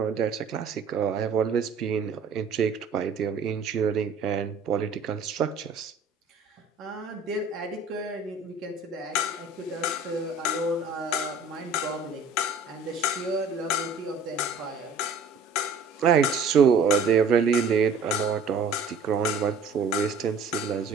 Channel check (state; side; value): quieter; left; 4.0 dB